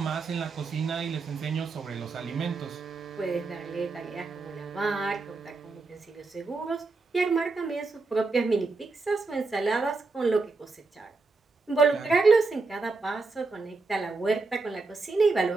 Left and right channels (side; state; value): left; quieter; 3.9 dB